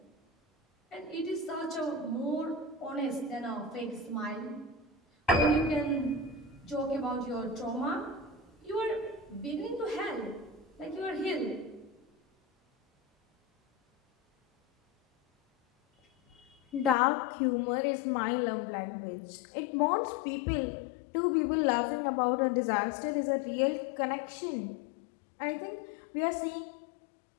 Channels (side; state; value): right; drops out; at 16.9 s